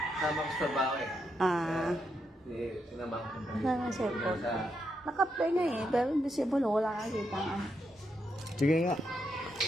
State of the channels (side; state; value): both; normal; correlation 0.82